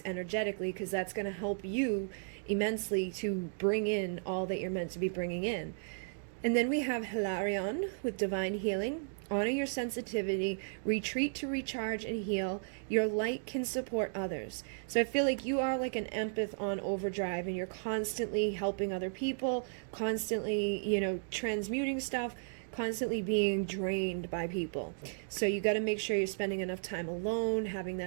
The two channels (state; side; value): silent; left; digital silence